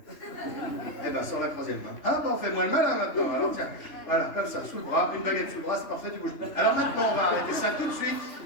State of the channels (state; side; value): late; right; 3.2 ms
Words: Eh ben, sors la troisième main. Ah, bah, fais-moi le malin maintenant. Alors tiens, voilà, comme ça, sous le bras, une baguette sous le bras, c'est parfait, tu bouges plus. Alors maintenant, on va arrêter ça tout de suite.